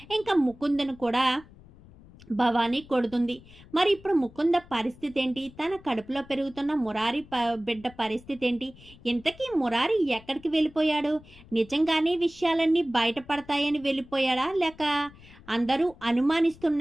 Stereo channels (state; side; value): noise; left; rumble, 22 dB below the sound